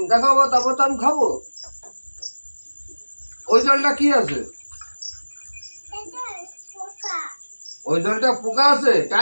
দেখাবো তারপর তো আমি খাবো। ওই জলটা কি আছে? এটা পোকা। ওই জলটা পোকা আছে?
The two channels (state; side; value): inverted; both; correlation -1.00